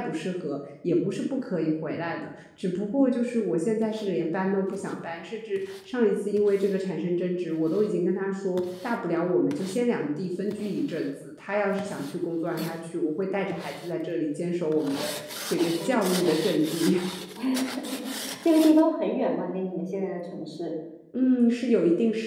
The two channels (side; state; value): both; identical; correlation 1.00